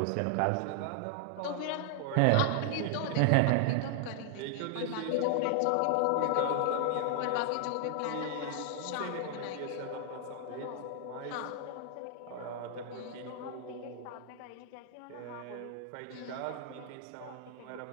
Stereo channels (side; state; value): both; different; correlation 0.00